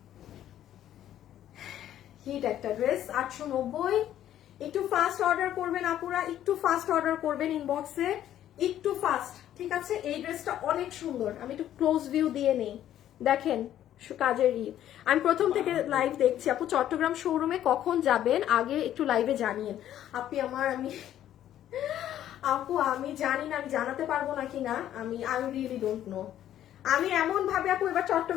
হিট একটা ড্রেস, 890। একটু ফাস্ট অর্ডার করবেন আপুরা, একটু ফাস্ট অর্ডার করবেন ইনবক্সে, একটু ফাস্ট, ঠিক আছে? এই ড্রেসটা অনেক সুন্দর। আমি একটু ক্লোজ ভিউ দিয়ে নেই, দেখেন কাজের আমি প্রথম থেকে লাইভ দেখছি। আপু চট্টগ্রাম শোরুমে কখন যাবেন আগে একটু লাইভে জানিয়েন। আপু আমি জানি না, আমি জানাতে পারবো না কিনা, আই রিয়েলি ডোন্ট নো। আমি এমন ভাবে আপু এবার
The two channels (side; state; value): right; quieter; 11.6 dB